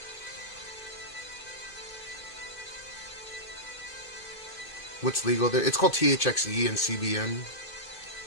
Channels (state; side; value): late; right; 2.6 ms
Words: What's legal there? It's called THXE and CBN.